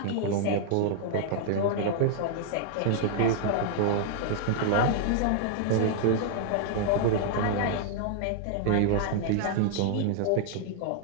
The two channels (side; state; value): both; different; correlation -0.01